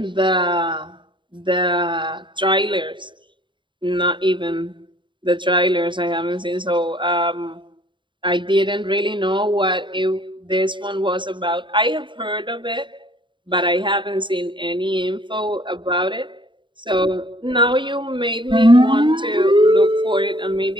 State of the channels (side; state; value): left; late; 0.23 ms